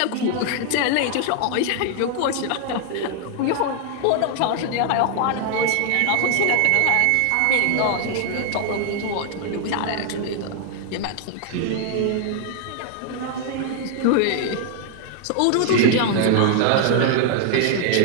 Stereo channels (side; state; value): both; different; correlation 0.00